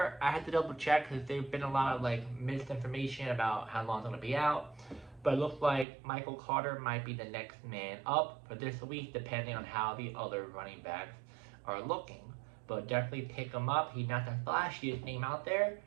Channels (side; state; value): left; drops out; at 5.9 s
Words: I had to double check because there's been a lot of misinformation about how long it's going to be out. But it looks like Michael Carter might be the next man up for this week, depending on how the other running backs are looking. But definitely pick him up. He's not the flashiest name out there,